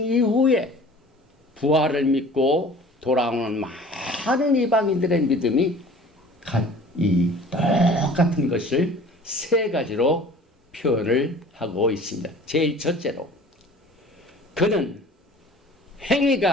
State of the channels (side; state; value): both; normal; correlation 0.46